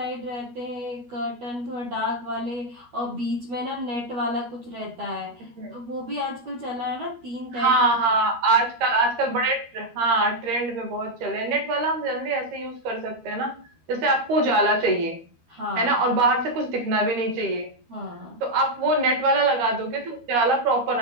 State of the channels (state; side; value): late; left; 12 ms